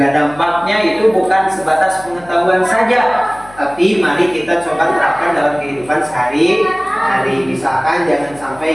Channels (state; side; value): noise; left; hum, 23 dB below the sound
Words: dampaknya. Itu bukan sebatas pengetahuan saja, tapi mari kita coba terapkan dalam kehidupan sehari-hari. Misalkan jangan